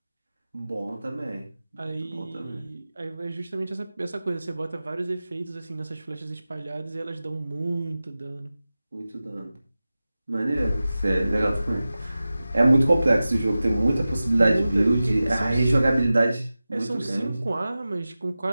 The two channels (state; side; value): inverted; both; correlation -0.95